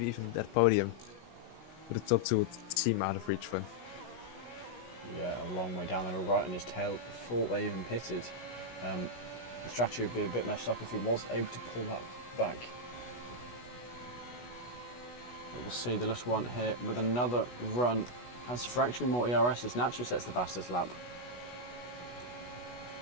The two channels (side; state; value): right; late; 16 ms